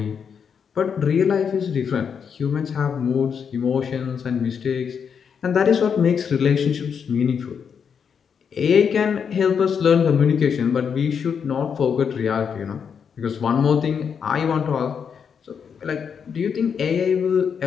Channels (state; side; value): quieter; right; 6.9 dB